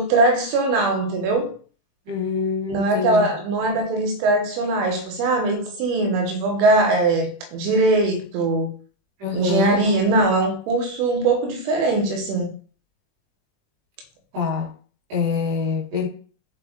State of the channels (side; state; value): left; late; 20 ms